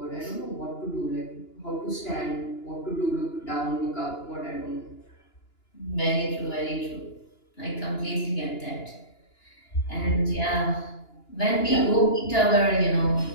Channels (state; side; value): late; right; 2.9 ms